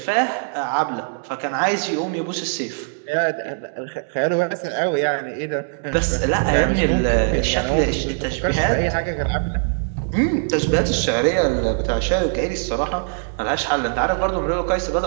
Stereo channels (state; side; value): silent; left; digital silence